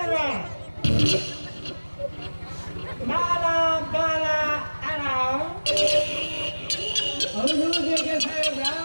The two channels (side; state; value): both; inverted; correlation -1.00